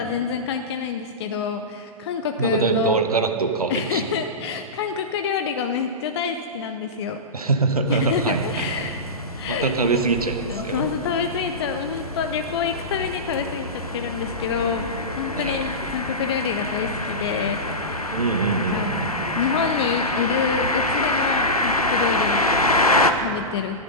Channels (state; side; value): normal; both; correlation -0.16